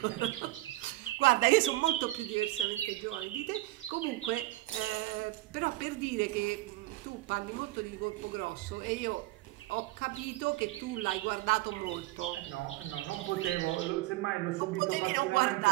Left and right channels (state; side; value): quieter; left; 18.4 dB